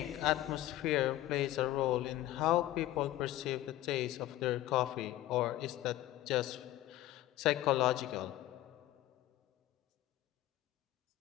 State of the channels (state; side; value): quieter; right; 15.0 dB